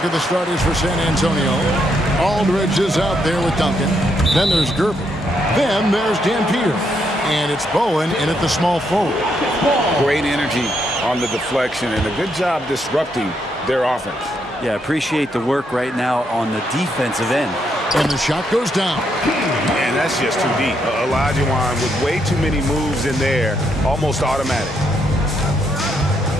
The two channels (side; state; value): both; normal; correlation 0.77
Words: at the starters for San Antonio. Aldridge is out there with Duncan. Then there's Gervin. Then there's Dan Peter. And it's Bowen in at the small forward. Great energy on the deflection and a good job disrupting their offense. Yeah, appreciate the work right now on the defensive end. And the shot goes down. And that's just too deep. Olajuwon with way too many moves in there, almost automatic.